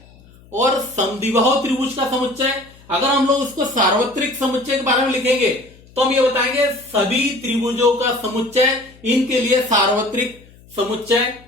और समद्विबाहु त्रिभुज का समुच्चय, अगर हम लोग उसको सार्वत्रिक समुच्चय के बारे में लिखेंगे तो हम ये बताएंगे सभी त्रिभुजों का समुच्चय इनके लिए सार्वत्रिक समुच्चय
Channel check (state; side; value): noise; left; hum, 25 dB below the sound